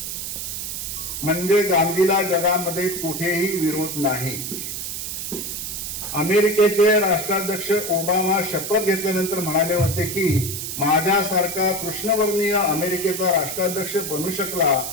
म्हणजे गांधीला जगामध्ये कुठेही विरोध नाही. अमेरिकेचे राष्ट्राध्यक्ष ओबामा शपथ घेतल्यानंतर म्हणाले होते की माझ्यासारखा कृष्णवर्णीय अमेरिकेचा राष्ट्राध्यक्ष बनू शकला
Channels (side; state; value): right; noise; hiss, 5 dB below the sound